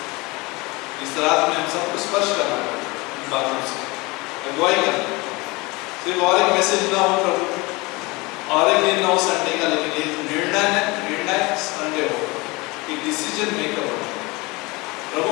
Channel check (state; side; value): quieter; right; 24.4 dB